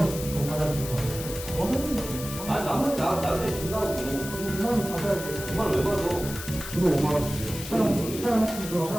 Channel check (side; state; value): left; noise; hiss, 10 dB below the sound